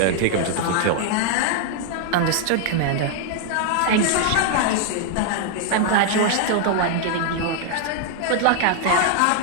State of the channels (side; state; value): both; different; correlation 0.00